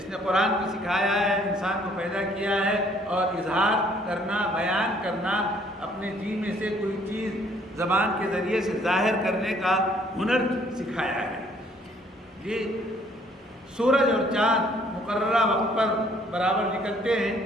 نے قرآن کو سکھایا ہے، انسان کو پیدا کیا ہے اور اظہار کرنا، بیان کرنا، اپنے جی میں سے کوئی چیز زبان کے ذریعے سے ظاہر کرنے کا ہنر سکھایا ہے۔ یہ سورج اور چاند مقررہ وقت پر برابر نکلتے ہیں،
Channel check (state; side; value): normal; both; correlation 0.62